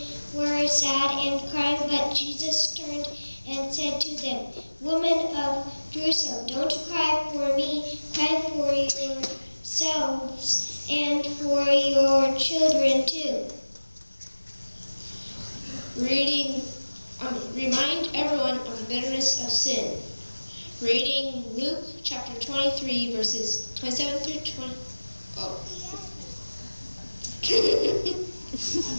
were sad and crying, but Jesus turned and said to them, "Women of Jerusalem, don't cry for me, cry for yourselves and for your children too." Remind everyone of the bitterness of sin. Reading Luke chapter 23, verses 27 through 20. Oh.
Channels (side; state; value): both; inverted; correlation -1.00